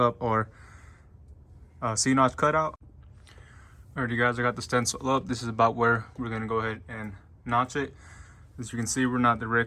our C-notch cutout. Alright you guys, I got the stencil up. This is about where we're gonna go ahead and notch it. As you can see, we're not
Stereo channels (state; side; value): identical; both; correlation 1.00